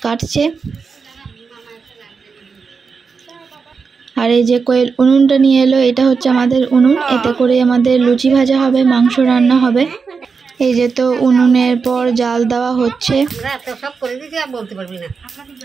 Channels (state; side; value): quieter; left; 5.2 dB